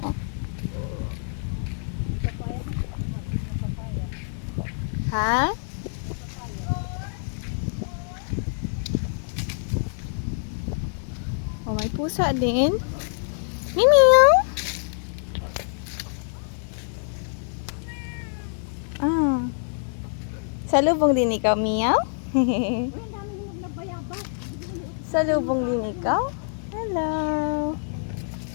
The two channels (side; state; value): right; silent; 61 dB below the other